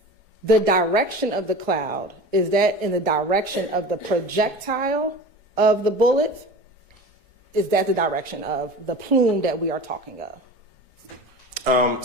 The direction of the cloud, is that in the direction of the projectile of the bullet? Is that the direction of the plume that we are talking of?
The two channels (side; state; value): both; normal; correlation 0.35